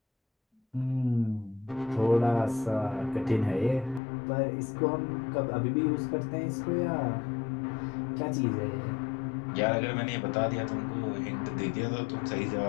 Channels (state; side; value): drops out; right; at 4.0 s